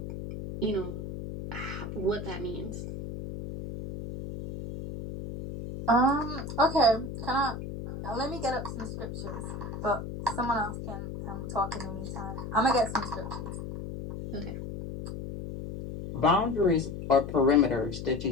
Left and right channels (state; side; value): noise; left; hum, 7 dB below the sound